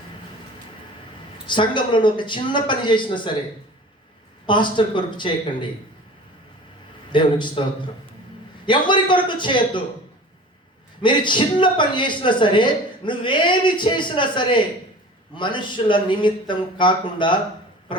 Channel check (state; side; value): normal; both; correlation 0.40